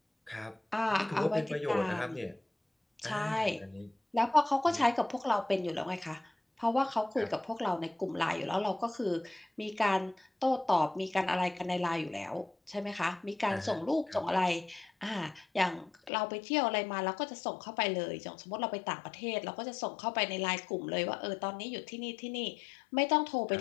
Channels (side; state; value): right; drops out; at 16.1 s